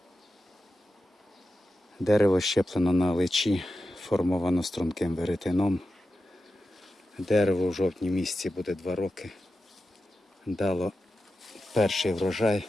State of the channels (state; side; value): normal; both; correlation 0.91